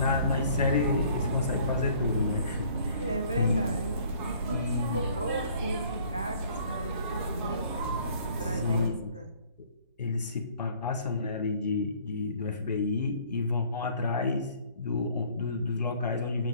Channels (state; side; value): inverted; both; correlation -0.56